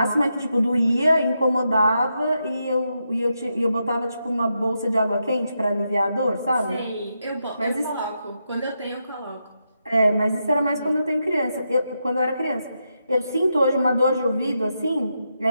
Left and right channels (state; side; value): inverted; both; correlation -0.84